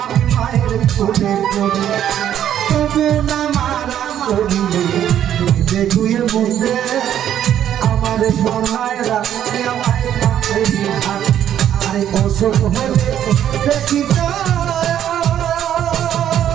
মায়ের কোলে করি তবু না মারা করিলে ধুয়ে মুখে আমার সবাইরা মায়ের কাছে থাকে আরে অসুখ হলে দেখি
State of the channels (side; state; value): left; quieter; 10.5 dB